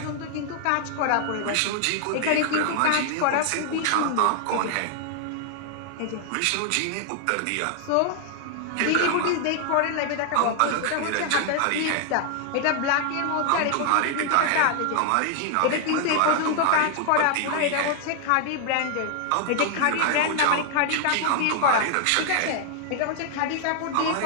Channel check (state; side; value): different; both; correlation 0.00